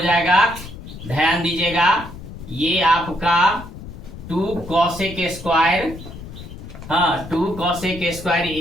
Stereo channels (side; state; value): left; noise; rumble, 13 dB below the sound